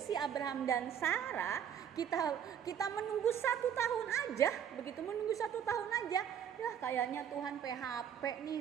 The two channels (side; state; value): left; quieter; 8.7 dB